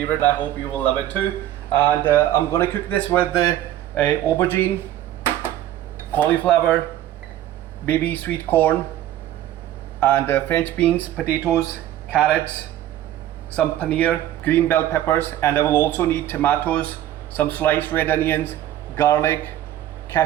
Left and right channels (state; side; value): quieter; left; 12.8 dB